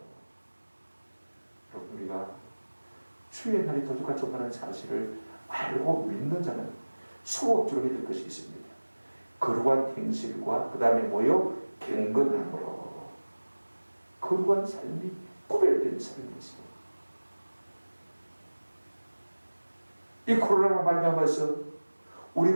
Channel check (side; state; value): both; inverted; correlation -1.00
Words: 여러분, 우리가 주의 날이 도둑같이 온다는 사실을 알고 믿는 자는 수업적으로 해야 될 것이 있습니다. 거룩한 행실과 그 다음에 뭐요? 경건함으로. 거룩한 삶이 구별된 삶이 있어요. 이 코로나로 말미암아서